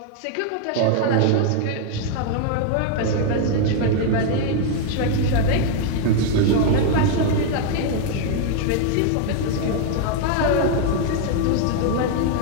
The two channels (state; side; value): different; both; correlation 0.00